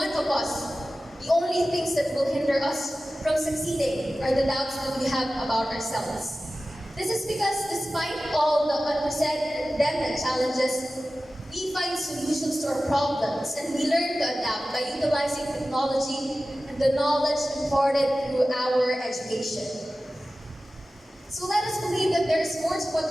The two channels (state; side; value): normal; both; correlation 0.95